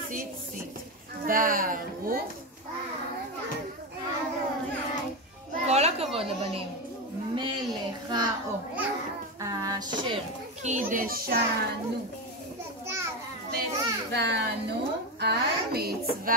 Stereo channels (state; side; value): normal; both; correlation 0.13